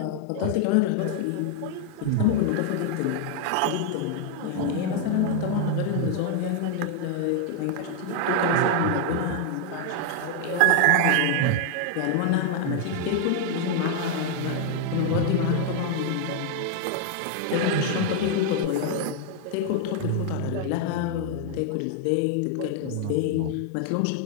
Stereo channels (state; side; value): different; both; correlation 0.00